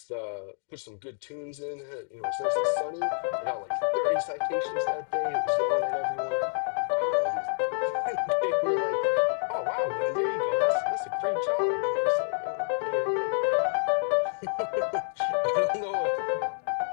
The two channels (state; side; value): silent; right; digital silence